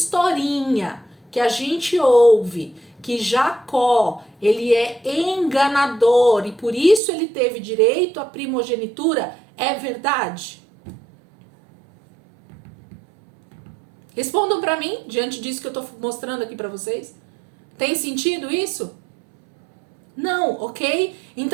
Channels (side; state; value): left; drops out; at 7.0 s